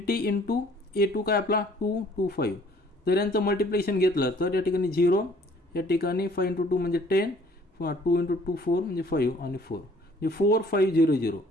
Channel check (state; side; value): normal; both; correlation 0.57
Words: × A2 काय आपला 225. जर यांचं मल्टिप्लिकेशन घेतलं तर या ठिकाणी 0, या ठिकाणी 5 × 2 म्हणजे 10, 2 × 2 4 म्हणजे 5 आणि 4 म्हणजे 4500